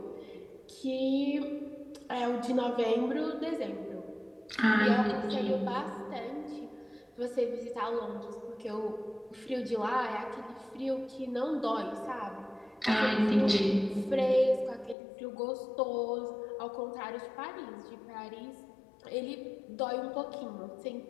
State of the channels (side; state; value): right; drops out; at 15.0 s